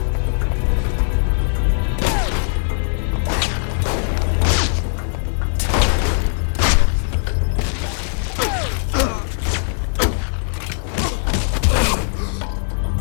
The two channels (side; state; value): right; silent; 58 dB below the other